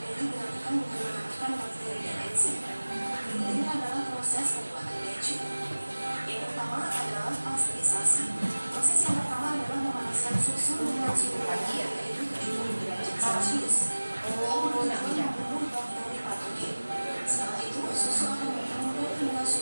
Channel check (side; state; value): both; inverted; correlation -1.00